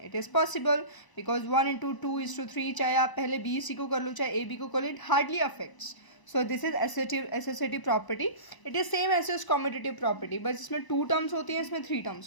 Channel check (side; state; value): right; late; 1.0 ms